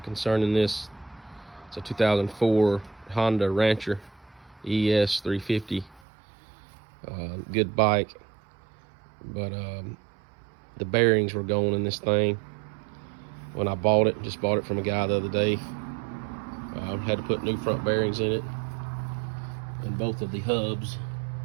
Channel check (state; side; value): drops out; left; at 6.0 s